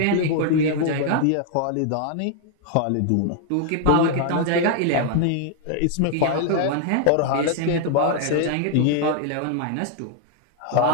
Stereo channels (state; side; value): different; both; correlation 0.00